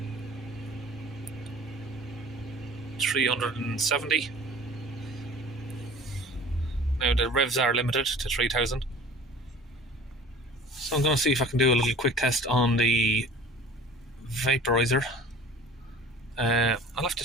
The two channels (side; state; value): both; normal; correlation 0.45